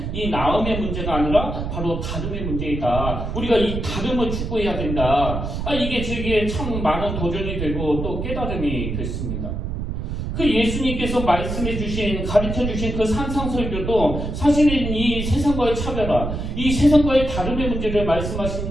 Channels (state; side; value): noise; right; rumble, 4 dB below the sound